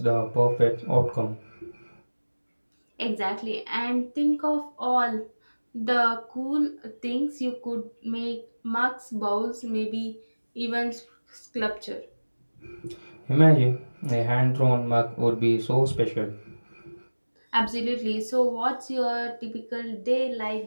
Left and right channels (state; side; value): inverted; both; correlation -1.00